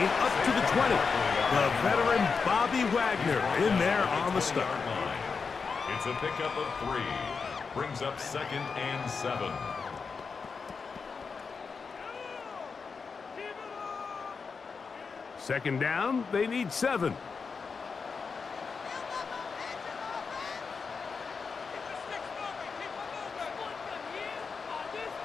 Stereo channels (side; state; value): right; quieter; 5.2 dB